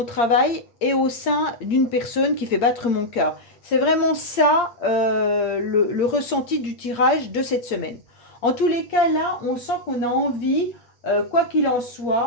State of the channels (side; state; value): right; late; 8.6 ms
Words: travail et au sein d'une personne qui fait battre mon cœur. C'est vraiment ça le ressenti du tirage de cette semaine. En tous les cas, là, on sent qu'on a envie, quoi qu'il en